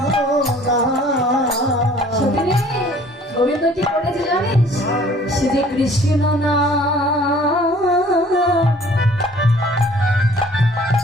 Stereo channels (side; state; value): both; normal; correlation 0.53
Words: সখিনী, গোবিন্দ কি করেছে জানিস সে যে কৃষ্ণ না